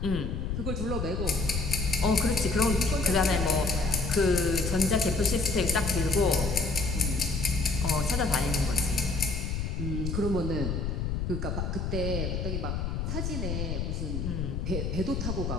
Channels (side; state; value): left; noise; rumble, 2 dB below the sound